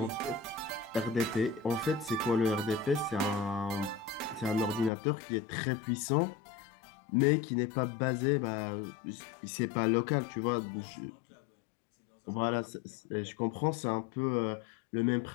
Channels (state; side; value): drops out; right; at 4.9 s